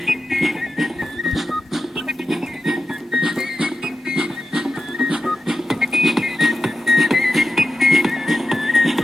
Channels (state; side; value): normal; both; correlation 0.90